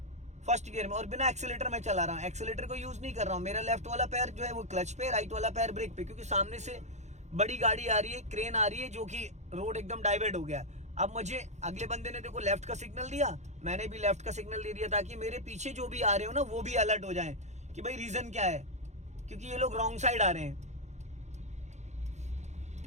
1st गियर में और बिना एक्सीलेटर में चला रहा हूँ, एक्सीलेटर को यूज नहीं कर रहा हूँ। मेरा लेफ्ट वाला पैर जो है वो क्लच पे, राइट वाला पैर ब्रेक पे, क्योंकि सामने से बड़ी गाड़ी आ रही है, क्रेन आ रही है, जो कि रोड एकदम डाइवर्ट हो गया। अब मुझे अगले बंदे ने देखो लेफ्ट का सिग्नल दिया, मैंने भी लेफ्ट का सिग्नल दे दिया ताकि मेरे पीछे जो भी आ रहे हो ना वो भी अलर्ट हो जाए कि भाई रीजन क्या है, क्योंकि ये लोग रॉन्ग साइड आ रहे हैं।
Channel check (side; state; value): left; late; 0.33 ms